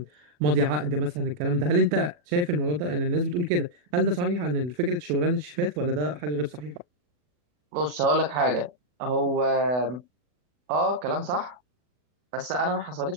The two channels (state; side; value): late; left; 40 ms